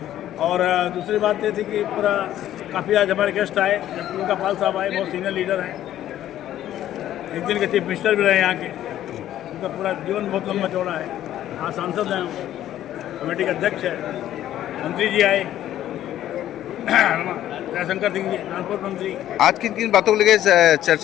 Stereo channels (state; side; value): quieter; right; 12.3 dB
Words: और दूसरी बात ये थी कि पूरा काफ़ी आज हमारे गेस्ट आए, उनका पाल साहब आए, बहुत सीनियर लीडर हैं, एक दिन के चीफ मिनिस्टर भी रहे यहाँ के, उनका पूरा जीवन बहुत लंबा चौड़ा है। हाँ, सांसद हैं, कमेटी के अध्यक्ष है, मंत्री जी आए, दयाशंकर सिंह जी ट्रांसपोर्ट मंत्री। आज किन किन बातों को लेकर